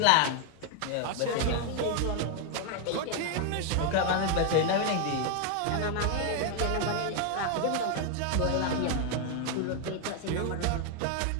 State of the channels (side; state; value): both; different; correlation 0.01